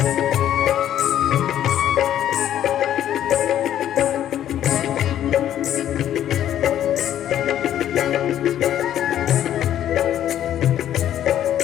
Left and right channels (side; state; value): right; quieter; 11.2 dB